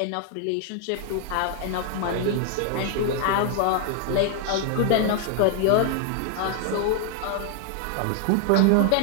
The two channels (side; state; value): both; different; correlation 0.00